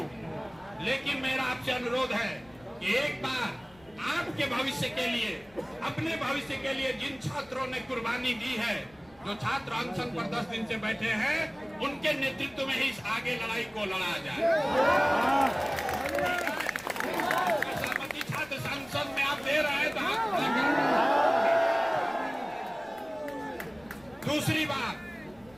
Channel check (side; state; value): left; noise; rumble, 27 dB below the sound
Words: लेकिन मेरा आपसे अनुरोध है कि एक बार आपके भविष्य के लिए, अपने भविष्य के लिए जिन छात्रों ने कुर्बानी दी है, जो छात्र अनशन पर 10 दिन से बैठे हैं, उनके नेतृत्व में ही इस आगे लड़ाई को लड़ा जाए। सभापति छात्र संसद में आप दे रहे हैं तो दूसरी बात,